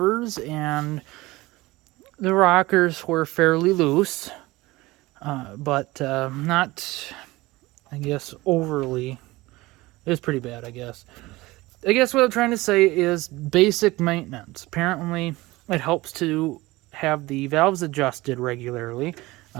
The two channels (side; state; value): left; quieter; 20.1 dB